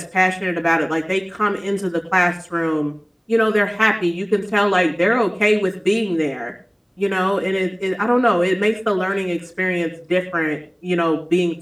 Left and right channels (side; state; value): both; identical; correlation 1.00